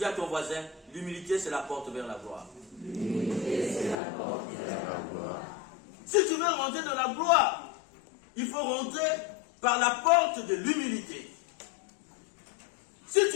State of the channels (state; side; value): drops out; right; at 4.0 s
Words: à ton voisin, l'humilité, c'est la porte vers la gloire. L'humilité, c'est la porte vers la gloire. Si tu veux rentrer dans la gloire, il faut rentrer par la porte de l'humilité. Si